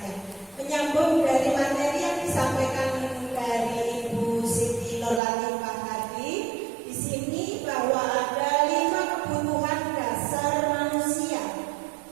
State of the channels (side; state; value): left; drops out; at 5.2 s